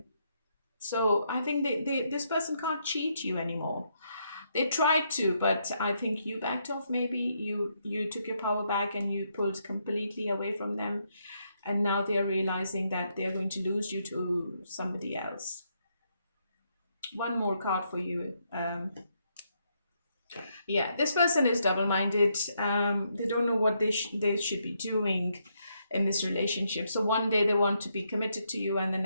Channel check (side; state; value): both; inverted; correlation -0.77